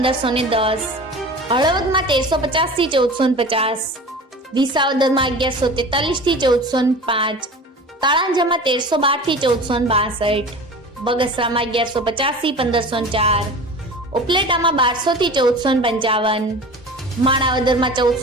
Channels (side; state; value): both; normal; correlation 0.37